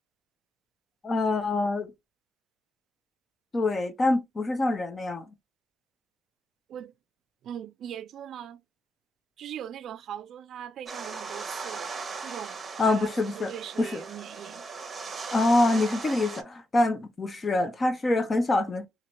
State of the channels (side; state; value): both; normal; correlation 0.86